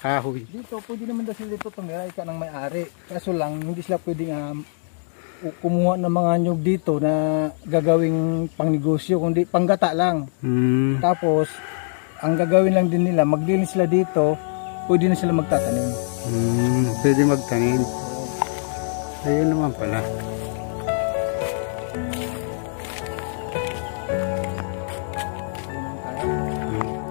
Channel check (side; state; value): right; silent; digital silence